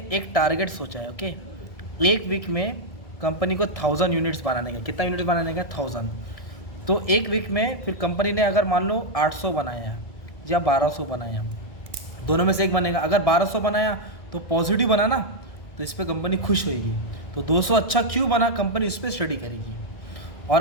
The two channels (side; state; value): right; late; 1.6 ms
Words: एक टारगेट सोचा है, ओके। एक वीक में कंपनी को 1000 यूनिट्स बनाने का। कितना यूनिट्स बनाने का? 1000। तो एक वीक में फिर कंपनी ने अगर मान लो 800 बनाया है या 1200 बनाया, दोनों में से एक बनेगा। अगर 1200 बनाया तो पॉजिटिव बना ना, तो इस पर कंपनी खुश होगी। तो 200 अच्छा क्यों बना, कंपनी इस पर स्टडी करेगी। और